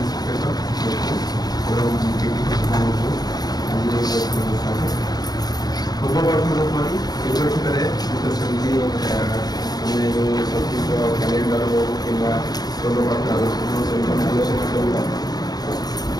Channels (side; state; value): right; late; 0.19 ms